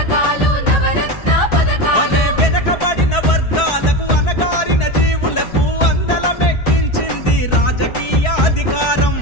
అరే వెనకబడిన వర్గాలకు అనగారిన జీవులకు అందలమెక్కించింది రాజకీయ అధికారం.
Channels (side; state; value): right; late; 4.6 ms